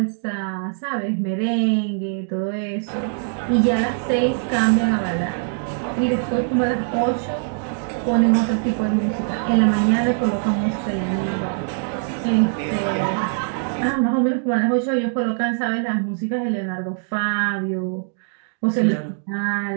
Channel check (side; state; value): left; silent; 64 dB below the other